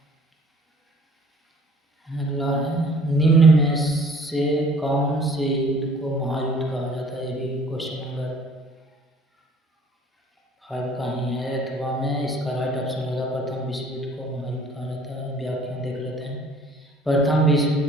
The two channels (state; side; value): normal; both; correlation 0.54